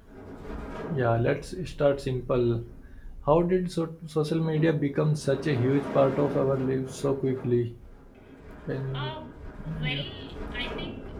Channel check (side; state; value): both; identical; correlation 1.00